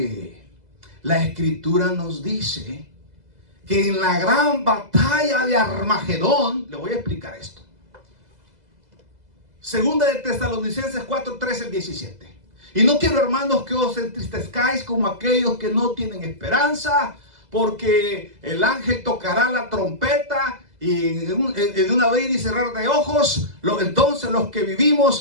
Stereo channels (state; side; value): late; left; 2.0 ms